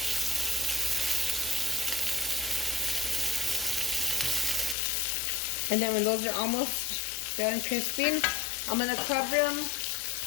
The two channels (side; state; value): right; drops out; at 4.8 s